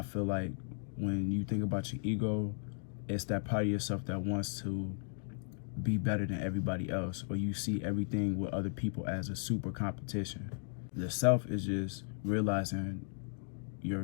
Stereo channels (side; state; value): right; silent; 54 dB below the other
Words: feel like when you think about your ego, it's that part of yourself that wants to be better than everybody else, or you see everything with other people as a super competition. The self is just realizing